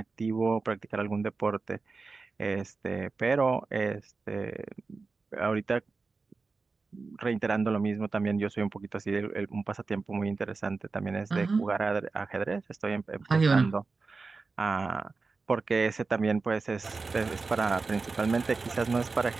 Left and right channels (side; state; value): left; quieter; 4.2 dB